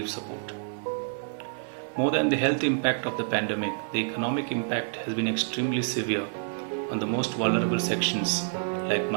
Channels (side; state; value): left; silent; 59 dB below the other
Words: support. More than the health impact of the pandemic, the economic impact has been extremely severe on the most vulnerable sections like